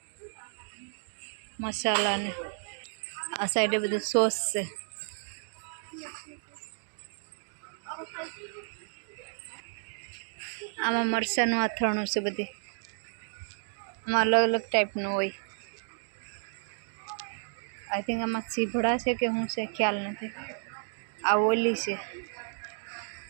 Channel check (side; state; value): left; silent; digital silence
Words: મસાલા ને. આ સાઈડે બધું સોસ છે. આમાં મરચાંનું અથાણું છે બધી. આમાં અલગ અલગ ટાઈપનું હોય. આઈ થિંક આમાં ચીભડા છે કે શું છે ખ્યાલ નથી. આ ઓલી છે.